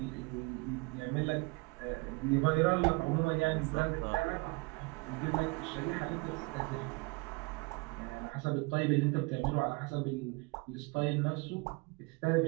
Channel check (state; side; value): quieter; left; 28.2 dB